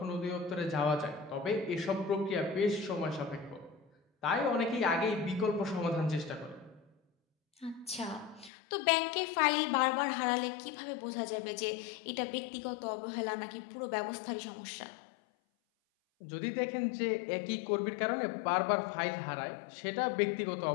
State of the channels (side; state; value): right; drops out; at 8.5 s